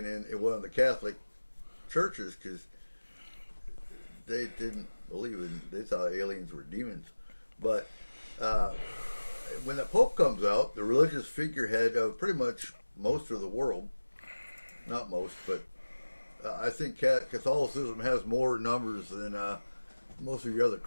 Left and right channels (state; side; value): inverted; both; correlation -1.00